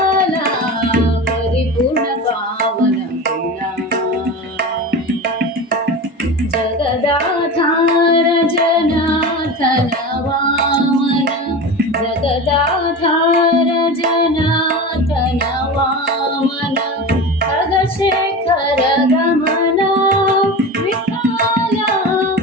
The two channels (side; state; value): both; normal; correlation 0.28